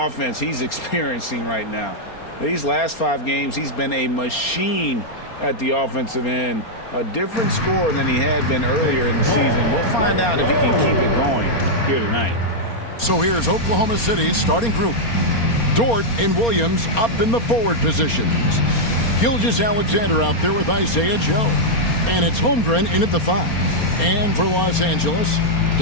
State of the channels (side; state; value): right; late; 4.3 ms